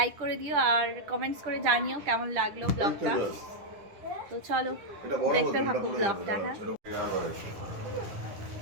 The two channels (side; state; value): left; late; 10 ms